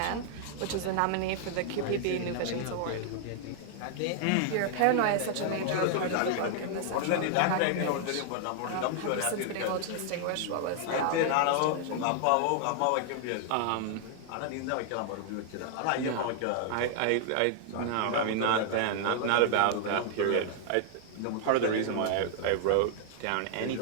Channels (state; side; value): different; both; correlation 0.00